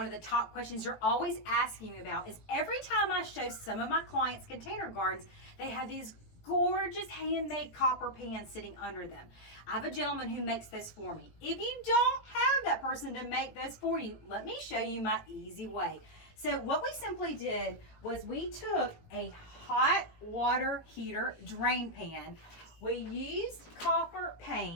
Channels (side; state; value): right; late; 18 ms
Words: of the top questions you're always asking me about is every time I show some of my clients container gardens, they have these gorgeous handmade copper pans sitting under them. I have a gentleman who makes those for me. If you don't have that person to make those for you, let me show you my easy way. So what we simply did was we took a hot water heater drain pan. We used copper